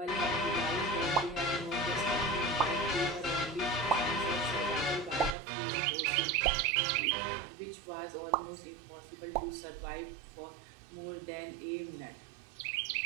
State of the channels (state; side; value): drops out; left; at 5.4 s